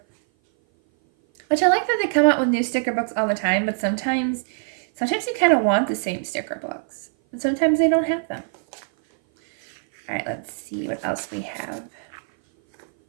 Which I like that they come out with new sticker books all the time, but sometimes you kind of want the same sticker books. And sometimes they don't have them. All right, let's see what else we have.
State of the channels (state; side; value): silent; left; 57 dB below the other